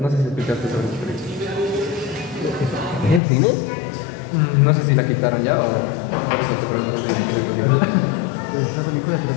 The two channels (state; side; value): drops out; right; at 3.2 s